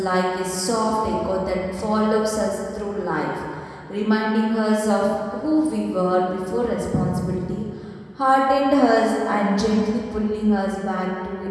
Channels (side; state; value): both; identical; correlation 1.00